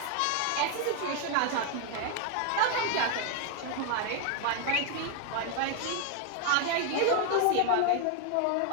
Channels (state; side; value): different; both; correlation 0.00